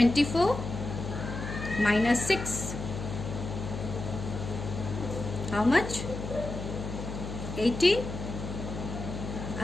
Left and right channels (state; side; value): noise; left; hum, 7 dB below the sound